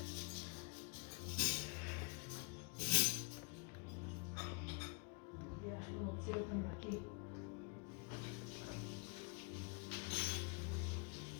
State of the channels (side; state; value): right; quieter; 31.1 dB